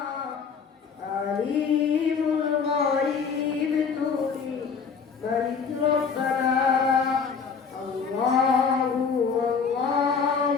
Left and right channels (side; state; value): right; quieter; 5.9 dB